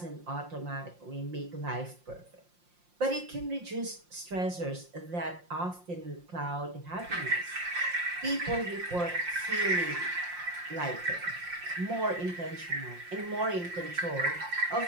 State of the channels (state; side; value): late; left; 5.7 ms